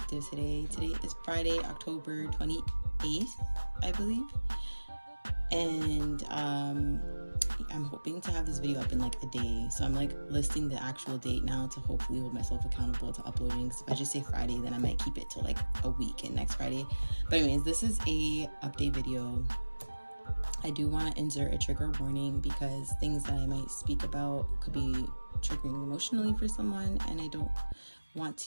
today. Today is Friday, October 28th, I believe, and I'm hoping to have this video up in like a day, so I'm like listing the actual date now to hopefully hold myself accountable to uploading, because if I just say Friday, then I might keep it till like a week and next Friday. But anyways, this is a update video. I do want to insert a trigger warning because things that I might speak about could be triggering emotionally for someone, and I don't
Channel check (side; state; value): both; inverted; correlation -1.00